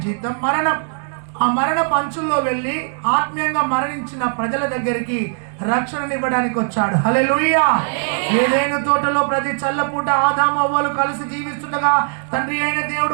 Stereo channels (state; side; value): silent; left; 66 dB below the other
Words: జీతం మరణం. ఆ మరణ పంచుల్లో వెళ్ళి ఆత్మీయంగా మరణించిన ప్రజల దగ్గరికి రక్షణనివ్వడానికి వచ్చాడు. హల్లెలూయా. ఏదైనా తోటలో ప్రతి చల్లపూట ఆదాము అవ్వలు కలిసి జీవిస్తుండగా తండ్రి అయిన